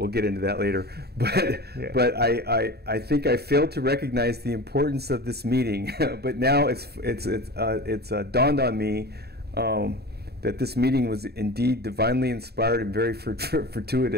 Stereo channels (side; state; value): left; late; 0.47 ms